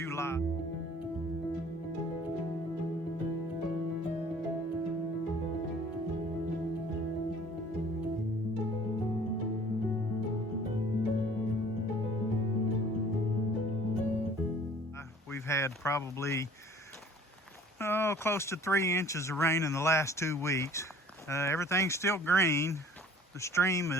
We've had probably close to 3 inches of rain in the last 2 weeks. Everything's still green. The stream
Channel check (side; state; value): both; normal; correlation 0.51